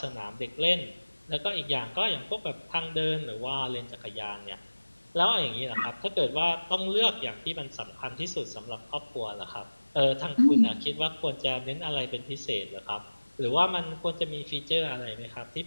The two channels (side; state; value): both; inverted; correlation -1.00